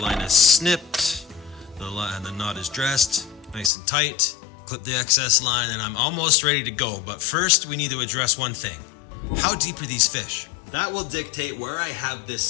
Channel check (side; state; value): right; drops out; at 3.7 s